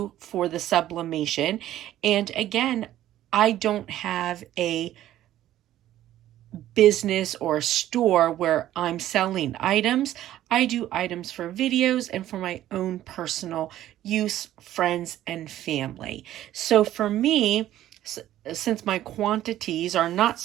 for the sublimation. And again, I don't have a business or a store where I'm selling items. I do items for videos and for my own personal use, friends and family. So for me, since my quantities are not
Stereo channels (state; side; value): quieter; left; 13.2 dB